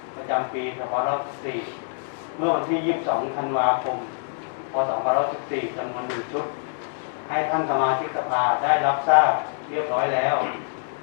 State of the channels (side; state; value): right; silent; digital silence